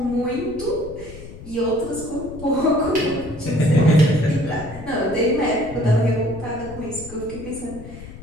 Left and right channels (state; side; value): noise; left; rumble, 15 dB below the sound